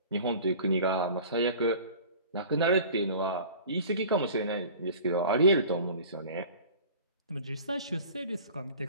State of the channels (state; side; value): inverted; both; correlation -0.42